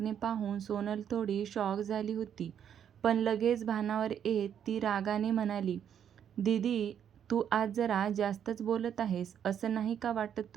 पाहून सोनल थोडी शॉक झाली होती. पण लगेच भानावर येत ती रागाने म्हणाली, "दीदी, तू आज जरा जास्तच बोलत आहेस. असं नाही का वाटत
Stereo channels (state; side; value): quieter; left; 8.9 dB